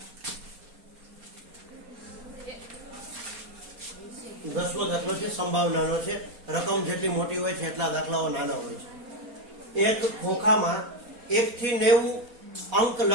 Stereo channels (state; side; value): late; left; 4.2 ms